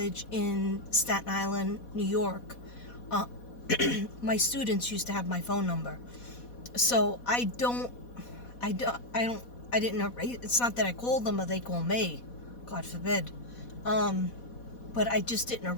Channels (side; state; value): right; late; 4.1 ms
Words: in Staten Island, New York. My students used to have my phone number. So I didn't erase. It's not that I called them or they call me, God forbid. But I just didn't